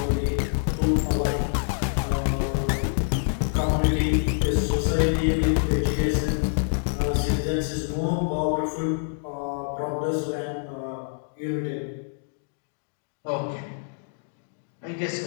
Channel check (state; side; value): silent; right; digital silence